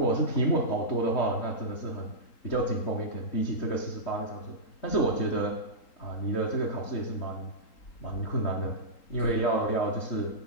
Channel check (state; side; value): late; right; 3.8 ms